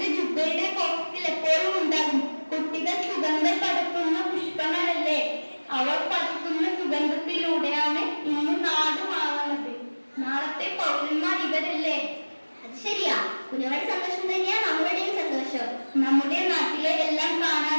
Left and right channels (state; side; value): inverted; both; correlation -1.00